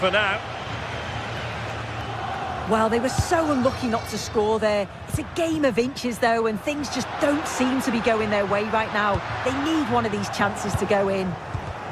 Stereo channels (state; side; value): identical; both; correlation 1.00